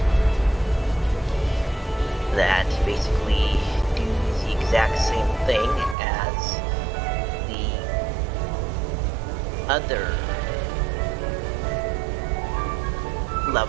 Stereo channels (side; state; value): left; drops out; at 6.0 s